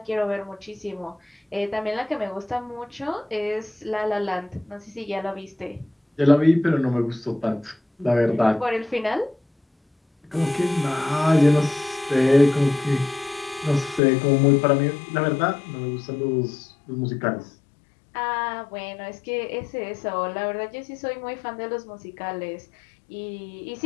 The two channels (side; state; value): right; drops out; at 14.0 s